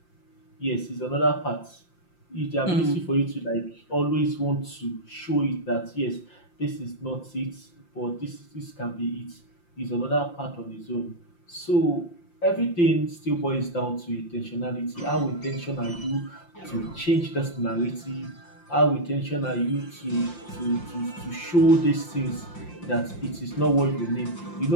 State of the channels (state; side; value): late; right; 5.7 ms